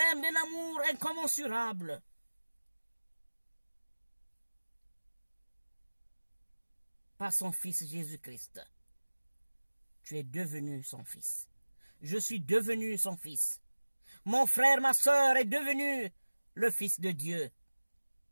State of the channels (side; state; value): both; inverted; correlation -1.00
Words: d'un amour incommensurable. Par son Fils Jésus-Christ, tu es devenu son Fils. Je suis devenu son Fils. Mon frère, ma sœur est devenu le Fils de Dieu